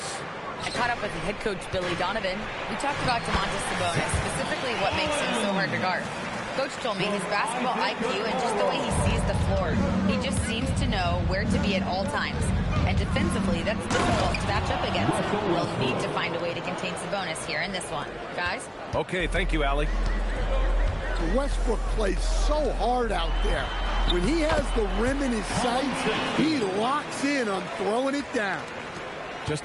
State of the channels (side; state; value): both; identical; correlation 1.00